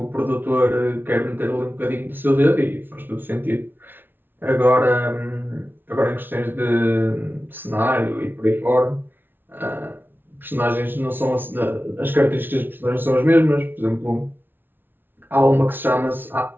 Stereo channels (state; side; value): late; left; 0.099 ms